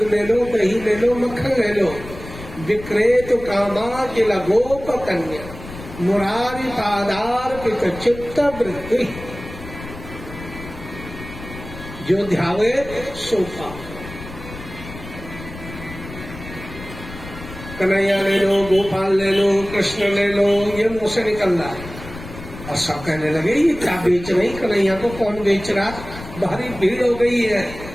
ले लो, दही ले लो, मक्खन ले लो। विक्रेत कामा किल गोप कन्या मुरारी पादार पित चित्त वृत्ति, जो ध्यावे सो पावे। कन्हैया ले लो, गोपाल ले लो, कृष्ण ले लो, ये मुंह से निकल रहा है। और सब कहने लगे ये क्या बेच रही, कन्हैया को कौन बेच रहा। भारी भीड़ हो गई है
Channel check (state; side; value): noise; left; rumble, 13 dB below the sound